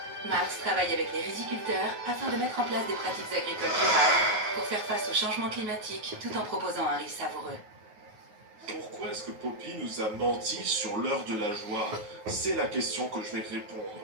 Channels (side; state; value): left; late; 9.4 ms